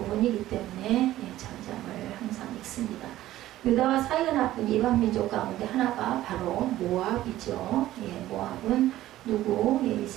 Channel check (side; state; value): left; quieter; 14.6 dB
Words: 때문에 전장을 항상 읽습니다. 유다와 사이가 나쁜 이방 민족 가운데 하나가 바로 모압이죠. 모압은 누구?